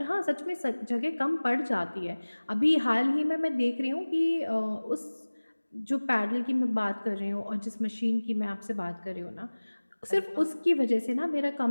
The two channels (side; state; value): both; inverted; correlation -1.00